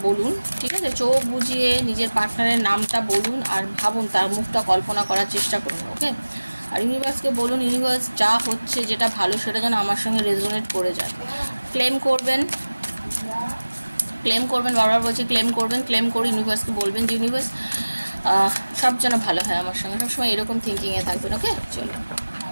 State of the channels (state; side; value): inverted; both; correlation -1.00